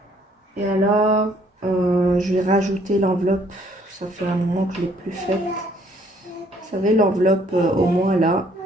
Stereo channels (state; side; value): normal; both; correlation 0.63